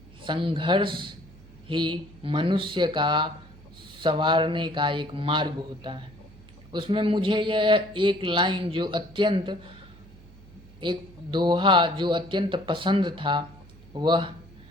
संघर्ष ही मनुष्य का संवारने का एक मार्ग होता है। उसमें मुझे यह एक लाइन जो अत्यंत एक दोहा जो अत्यंत पसंद था, वह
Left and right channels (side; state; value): right; noise; hum, 22 dB below the sound